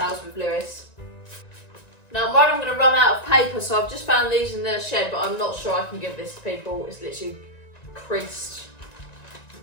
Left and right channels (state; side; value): late; right; 1.9 ms